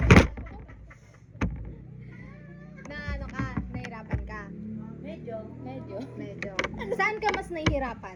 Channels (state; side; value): identical; both; correlation 1.00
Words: Na ano ka, nahirapan ka? Medyo. Medyo. Saan ka mas